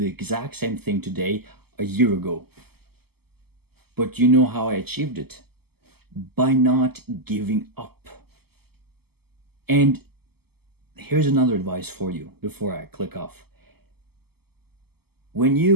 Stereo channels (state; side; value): late; left; 0.96 ms